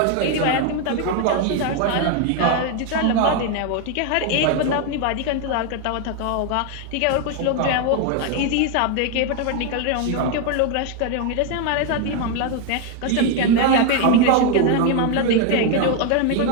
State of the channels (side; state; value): both; different; correlation 0.01